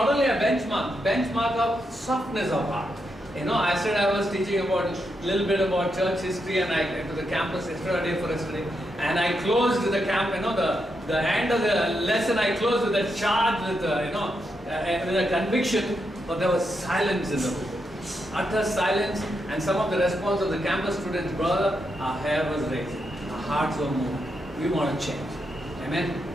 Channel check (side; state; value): both; normal; correlation 0.83